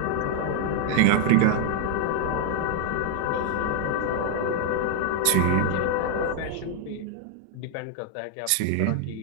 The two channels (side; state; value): both; different; correlation 0.00